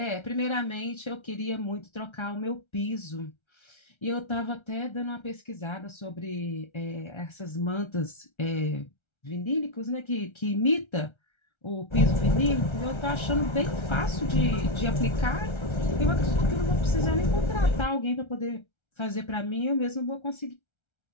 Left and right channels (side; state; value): right; late; 1.3 ms